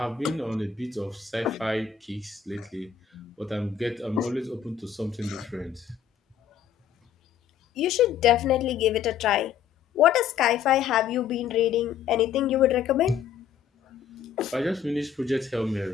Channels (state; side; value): quieter; right; 8.2 dB